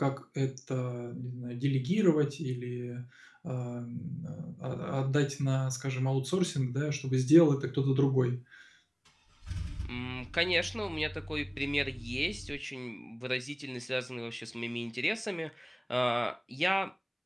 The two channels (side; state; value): both; identical; correlation 1.00